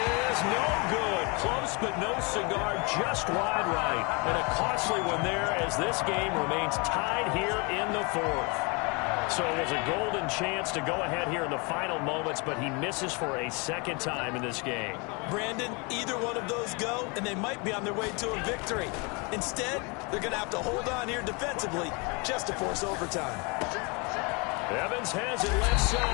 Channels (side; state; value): right; quieter; 30.6 dB